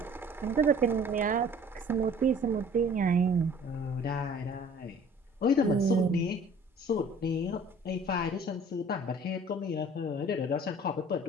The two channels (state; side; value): normal; both; correlation 0.50